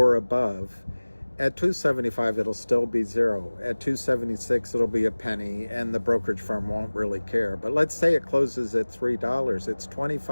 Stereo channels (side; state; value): both; inverted; correlation -1.00